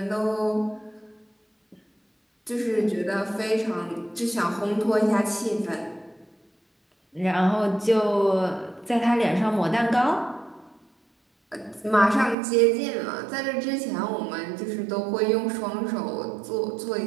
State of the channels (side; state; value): left; drops out; at 12.4 s